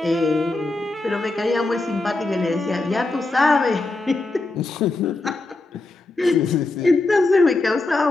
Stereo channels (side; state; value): right; quieter; 3.1 dB